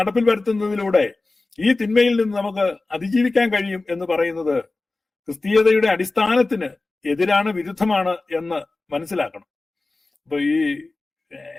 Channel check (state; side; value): quieter; right; 3.3 dB